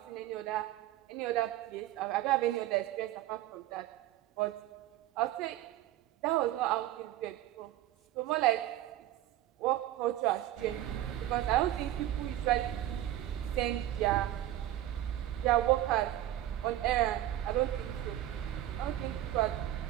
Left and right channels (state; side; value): quieter; left; 13.4 dB